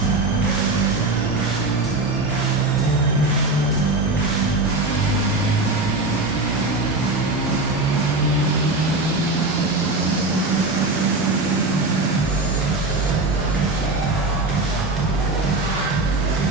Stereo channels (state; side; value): quieter; left; 3.0 dB